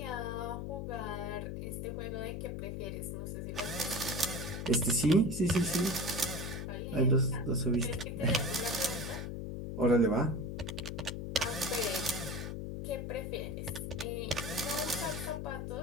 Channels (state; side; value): noise; left; hum, 4 dB below the sound